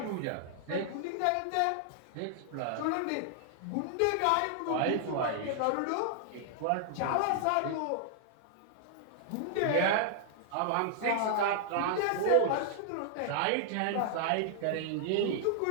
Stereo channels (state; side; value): different; both; correlation 0.00